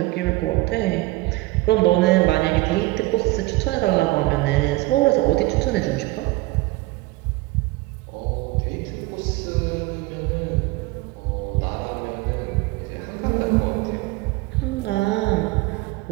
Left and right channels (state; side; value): quieter; left; 20.6 dB